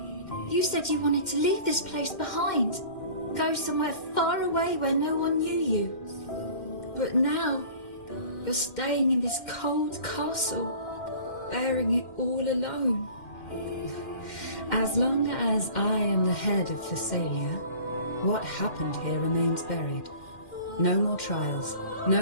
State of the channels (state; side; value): late; right; 2.1 ms